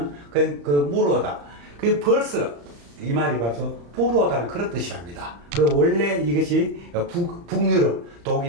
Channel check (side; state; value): left; late; 35 ms